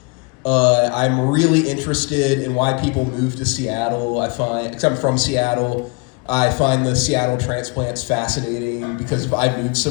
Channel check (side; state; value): right; quieter; 30.0 dB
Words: I'm really interested in why people move to Seattle. Because I'm from Seattle, I find the Seattle transplants fascinating because if I moved